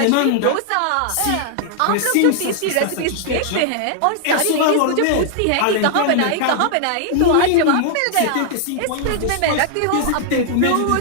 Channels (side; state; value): both; different; correlation -0.01